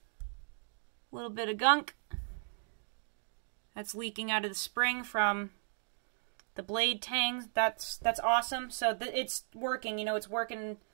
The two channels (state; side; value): silent; left; 54 dB below the other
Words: gunk. that's leaking out of the spring from the blade tang. That's awesome. So it's working, you know, it's working